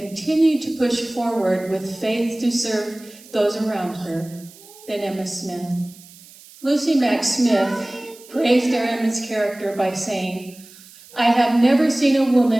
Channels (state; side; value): noise; right; hiss, 22 dB below the sound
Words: to push forward with faith to serve those around her than Emma Smith. Lucy Mack Smith praised their Emma's character by saying, "I have never seen a